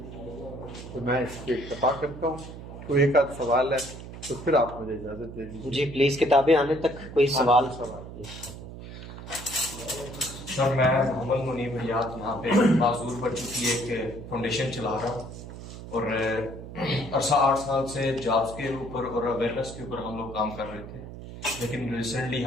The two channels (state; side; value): noise; right; hum, 12 dB below the sound